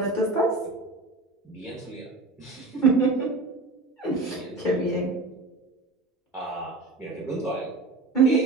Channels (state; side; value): quieter; left; 3.2 dB